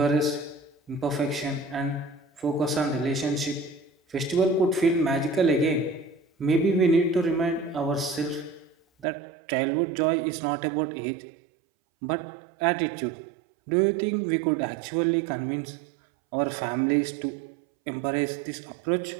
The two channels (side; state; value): left; drops out; at 9.1 s